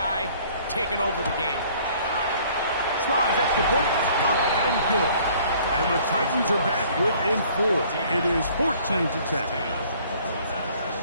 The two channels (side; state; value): both; inverted; correlation -0.56